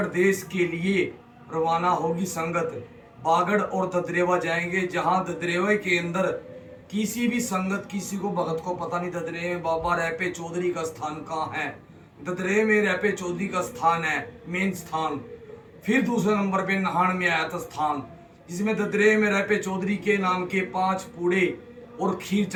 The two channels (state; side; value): identical; both; correlation 1.00